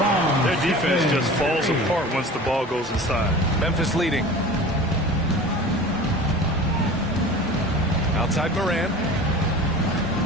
Their defense just falls apart once the ball goes inside. Memphis leading. Outside Morant.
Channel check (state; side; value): normal; both; correlation 0.38